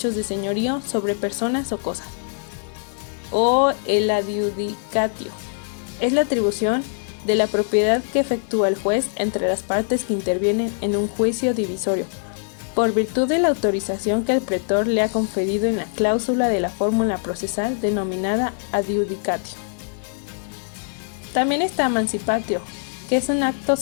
de señorío sobre personas o cosas. O el adjudicatio. Es la atribución de la propiedad que efectúa el juez entre las partes que intervienen en un juicio divisorio, por virtud de la autorización que el pretor le ha conferido en la cláusula de la fórmula procesal denominada adjudicatio. También está emancipatio, que es un acto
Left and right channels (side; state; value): right; silent; digital silence